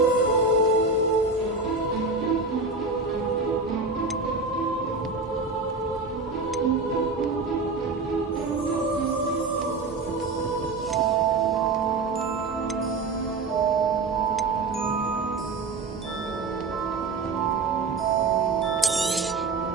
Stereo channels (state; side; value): quieter; left; 3.9 dB